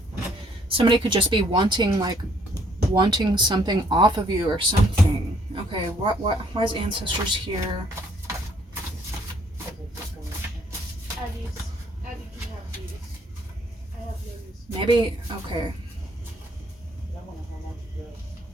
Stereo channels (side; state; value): both; normal; correlation 0.64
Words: Somebody could just be wanting something off of you or something. Okay, why is ancestors here? Maybe, okay.